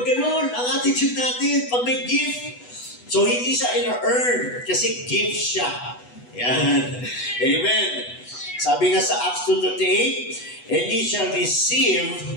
ganon? Ang attitude natin, pag may gift. So, hindi siya in-earn kasi gift siya. Yan. Amen. Sabi nga sa Acts 2:38, and ye shall receive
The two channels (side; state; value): right; late; 8.1 ms